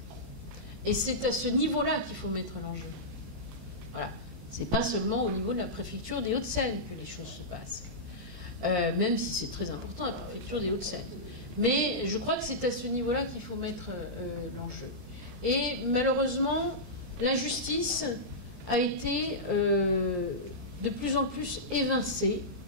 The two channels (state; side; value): late; left; 17 ms